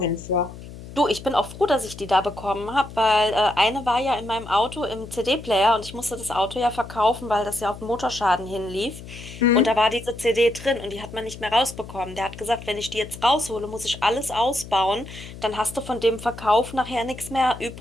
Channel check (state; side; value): noise; left; hum, 14 dB below the sound